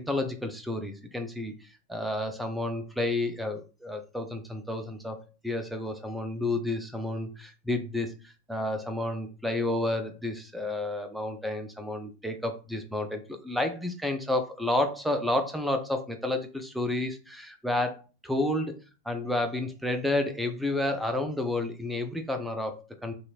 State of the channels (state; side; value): normal; both; correlation 0.64